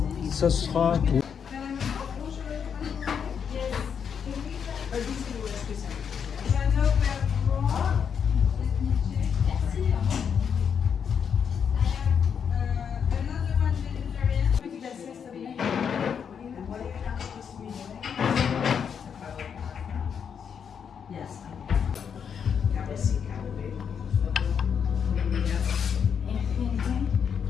Ça sera tout.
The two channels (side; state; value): right; quieter; 7.2 dB